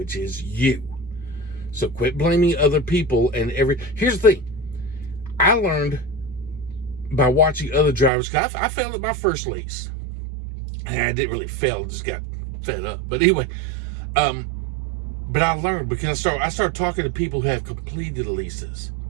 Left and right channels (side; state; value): left; drops out; at 8.1 s